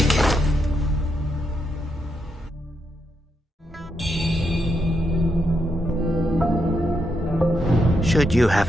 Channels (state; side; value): normal; both; correlation 0.80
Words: it. Should you